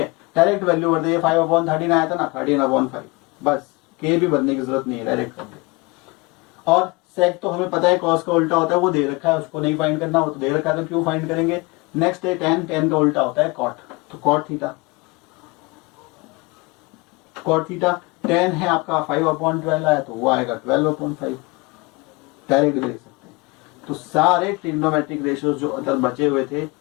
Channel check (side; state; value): right; quieter; 26.0 dB